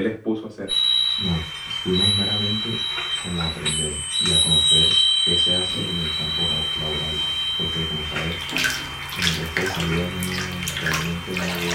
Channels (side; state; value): both; identical; correlation 1.00